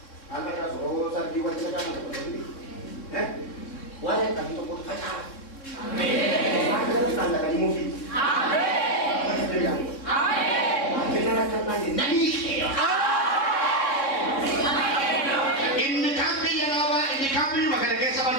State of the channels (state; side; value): late; right; 3.6 ms